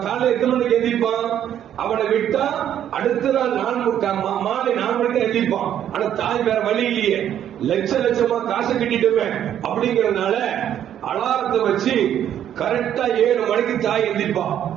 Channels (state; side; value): quieter; left; 10.3 dB